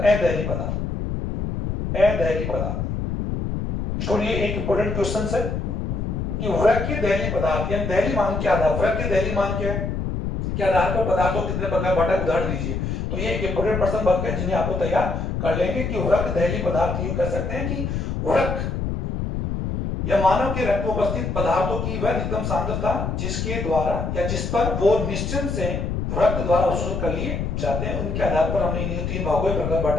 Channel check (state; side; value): noise; left; rumble, 2 dB below the sound